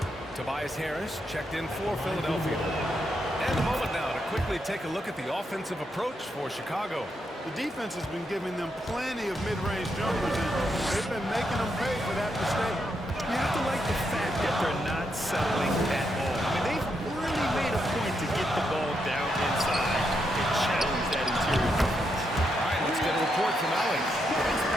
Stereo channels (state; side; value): normal; both; correlation 0.81